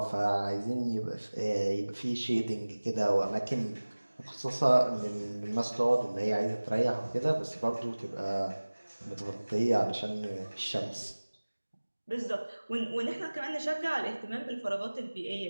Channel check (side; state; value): both; inverted; correlation -1.00